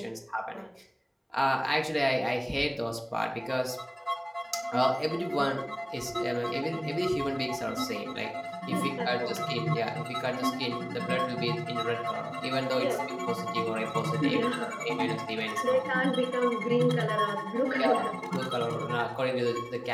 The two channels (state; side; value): identical; both; correlation 1.00